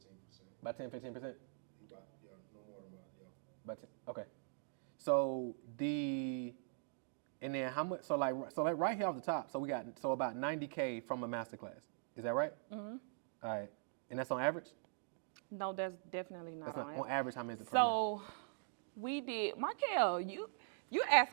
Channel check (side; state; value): left; silent; digital silence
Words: 10-15%. About 10-15%? No more than that, yeah. About 10, okay. So and then how much? So like right here off the top. So we got about 90K from a masterclass. Is that right? All right. And that's on average? No, that's definitely not. That's not on average. How many is it per So we did, Markel, you